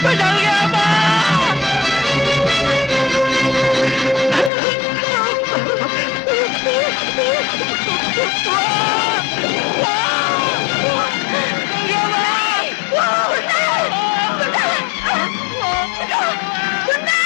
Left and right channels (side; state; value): right; drops out; at 4.5 s